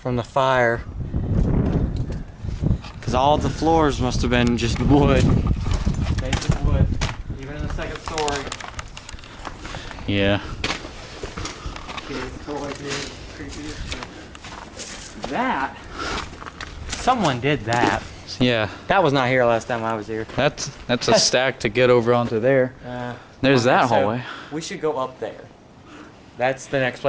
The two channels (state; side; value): identical; both; correlation 1.00